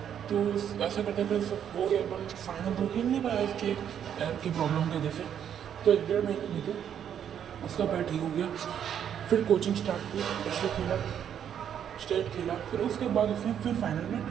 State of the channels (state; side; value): quieter; left; 9.1 dB